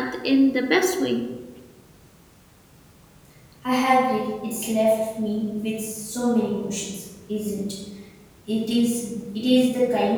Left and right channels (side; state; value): both; identical; correlation 1.00